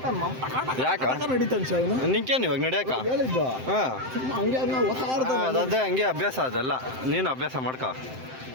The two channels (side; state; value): left; late; 7.7 ms